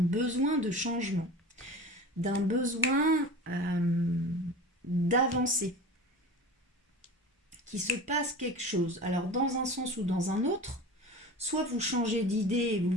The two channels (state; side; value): normal; both; correlation 0.34